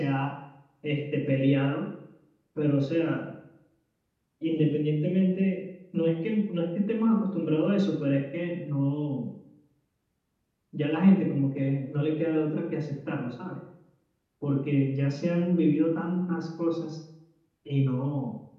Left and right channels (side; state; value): both; identical; correlation 1.00